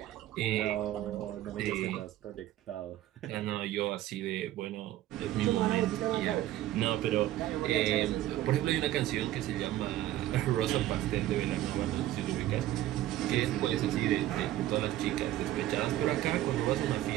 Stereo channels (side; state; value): left; quieter; 14.2 dB